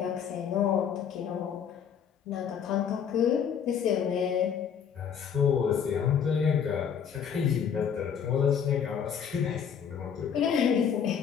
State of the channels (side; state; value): right; quieter; 7.7 dB